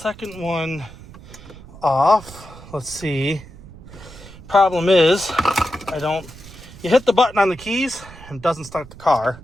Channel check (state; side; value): noise; right; rumble, 18 dB below the sound